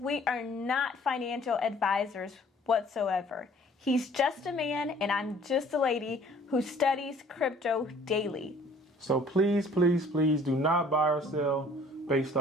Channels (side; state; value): both; normal; correlation 0.54